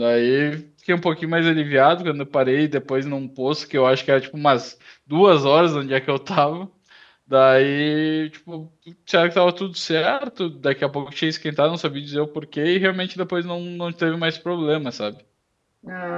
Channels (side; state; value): both; identical; correlation 1.00